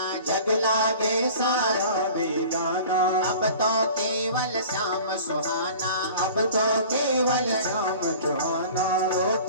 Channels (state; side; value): inverted; both; correlation -0.43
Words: जग लागे सारा बेगाना। अब तो केवल श्याम सुहाना, अब तो केवल श्याम सुहाना,